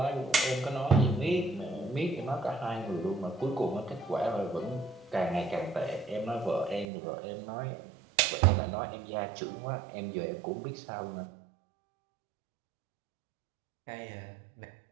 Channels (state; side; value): drops out; left; at 6.9 s